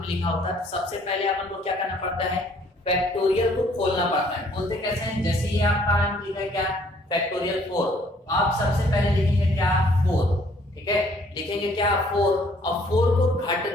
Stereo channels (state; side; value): normal; both; correlation 0.61